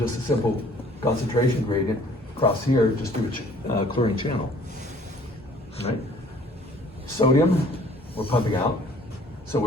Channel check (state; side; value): normal; both; correlation 0.55